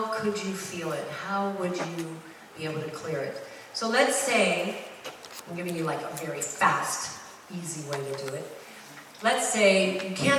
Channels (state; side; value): identical; both; correlation 1.00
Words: could you feel it? How would you be able to clear it? So let's say, I'm giving you like a very fast, easy way to do it. Let's say you